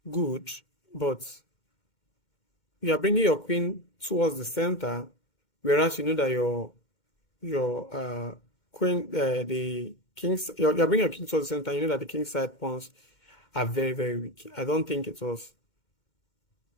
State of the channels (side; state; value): right; late; 2.1 ms